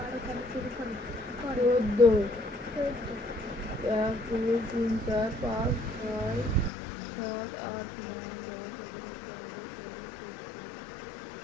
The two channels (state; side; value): drops out; right; at 6.7 s